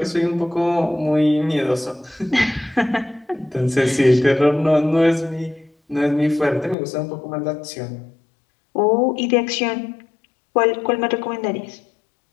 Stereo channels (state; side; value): drops out; right; at 6.8 s